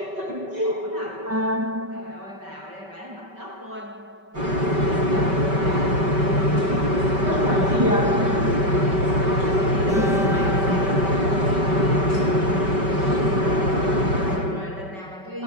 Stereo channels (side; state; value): left; late; 5.2 ms